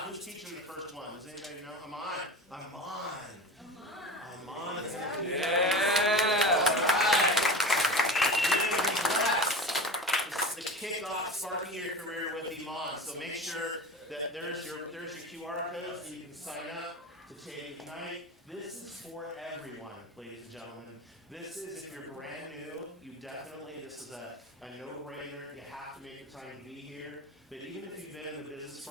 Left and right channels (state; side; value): normal; both; correlation 0.30